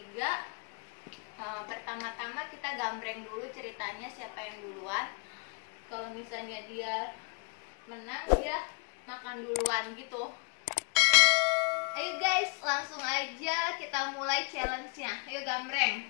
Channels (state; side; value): quieter; right; 36.7 dB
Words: Pertama-tama kita gambreng dulu ceritanya siapa yang duluan. Kalau misalnya dia menang, dia makan duluan gitu. Ayo guys, langsung aja kita mulai challenge-nya. Ayo